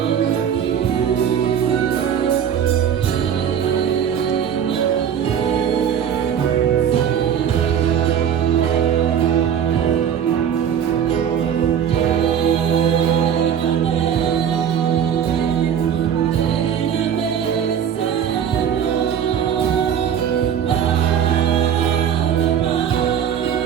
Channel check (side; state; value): left; quieter; 8.7 dB